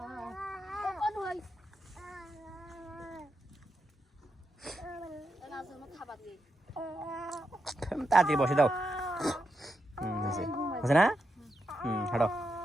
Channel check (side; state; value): both; normal; correlation 0.85